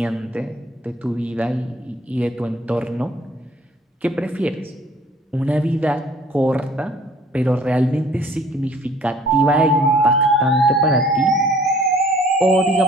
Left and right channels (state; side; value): normal; both; correlation 0.55